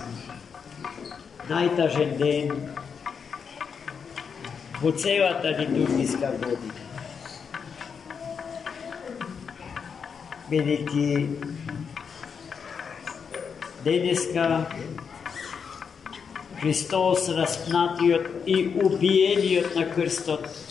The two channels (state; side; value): quieter; right; 6.3 dB